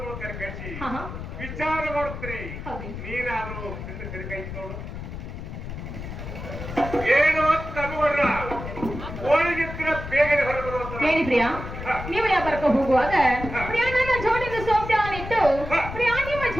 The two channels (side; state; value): left; noise; rumble, 9 dB below the sound